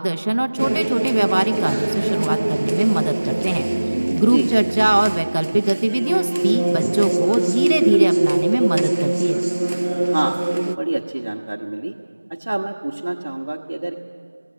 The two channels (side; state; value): both; inverted; correlation -1.00